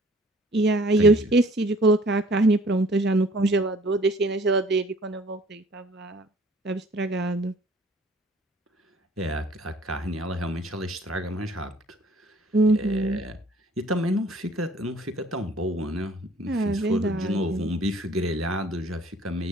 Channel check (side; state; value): both; normal; correlation 0.55